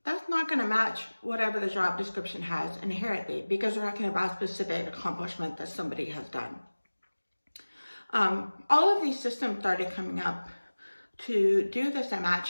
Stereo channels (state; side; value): inverted; both; correlation -1.00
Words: That's not going to match whatever the job description has inherently, because we're talking about a specific accomplishment that somebody has done. All of these systems started coming up to do this